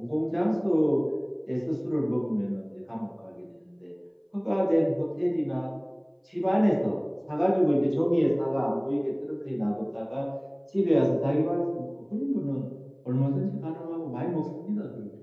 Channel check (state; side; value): identical; both; correlation 1.00